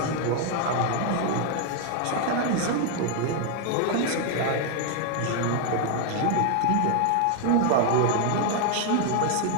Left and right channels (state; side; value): different; both; correlation 0.00